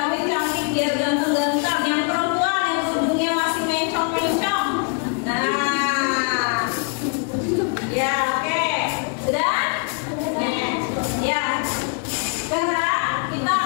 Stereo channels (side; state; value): right; quieter; 37.0 dB